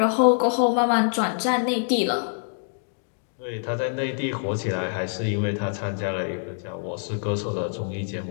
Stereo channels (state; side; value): silent; right; digital silence